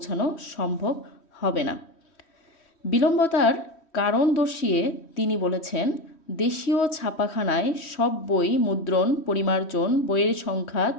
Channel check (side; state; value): right; late; 3.1 ms